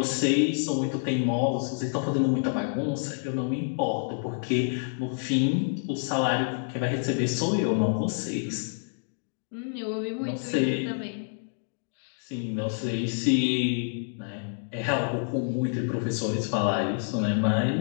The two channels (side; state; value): right; silent; digital silence